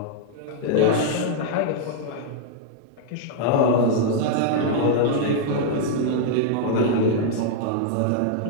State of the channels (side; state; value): both; different; correlation -0.01